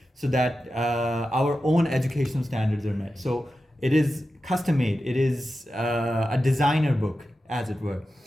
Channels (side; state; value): both; normal; correlation 0.92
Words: so that our own educational standards are met. So it is custom-made. It is a designer book, as it were,